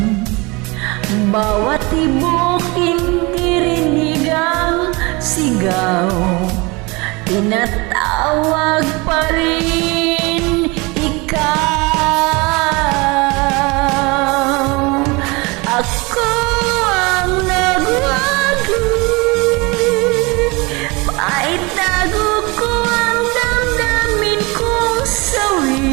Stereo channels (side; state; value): left; quieter; 26.0 dB